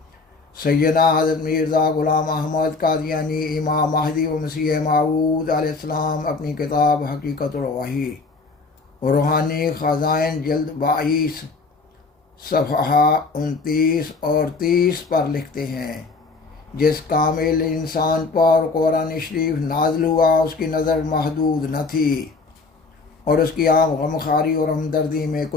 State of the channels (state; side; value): quieter; right; 4.1 dB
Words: سیدنا حضرت مرزا غلام احمد قادیانی امام مہدی و مسیح موعود علیہ السلام اپنی کتاب حقیقت الوحی روحانی خزائن جلد 22 صفحہ 29 اور 30 پر لکھتے ہیں، جس کامل انسان پر قرآن شریف نازل ہوا اس کی نظر محدود نہ تھی، اور اس کی عام غمخواری اور ہمدردی میں